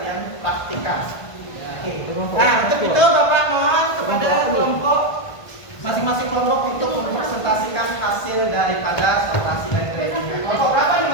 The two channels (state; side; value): late; right; 1.5 ms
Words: praktikkan. Oke. Nah, untuk itu Bapak mohon kepada kelompok masing-masing kelompok untuk mempresentasikan hasil daripada sortasi dan gradingnya. Kelompok berapa nih?